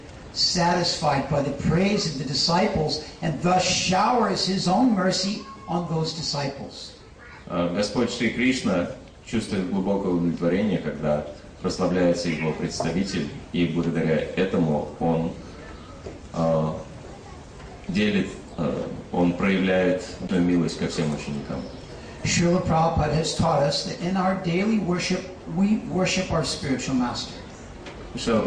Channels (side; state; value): both; identical; correlation 1.00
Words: satisfied by the praise of the disciples and thus showers his own mercy on those disciples. Господь Шри Кришна чувствует глубокое удовлетворение, когда прославляется его представитель, и благодаря этому он он проявляет эту милость ко всем ученикам. Srila Prabhupada has taught us that in our daily worship, we worship our spiritual master. Шрила